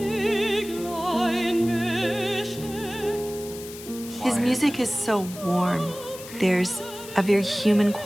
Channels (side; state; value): left; noise; hiss, 14 dB below the sound